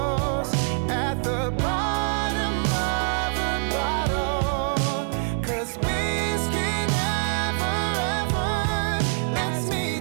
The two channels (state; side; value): silent; left; 60 dB below the other